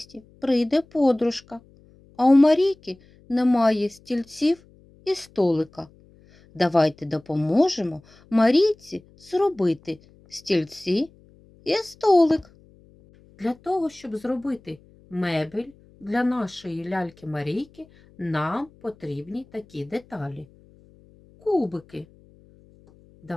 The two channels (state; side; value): noise; left; hum, 28 dB below the sound